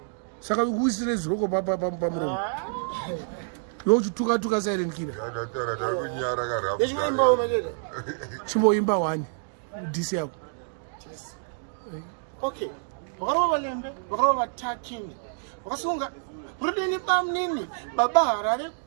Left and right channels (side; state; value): left; silent; digital silence